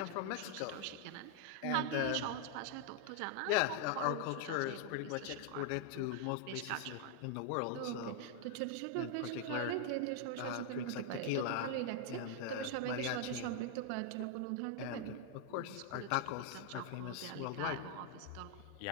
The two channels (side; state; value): both; different; correlation 0.00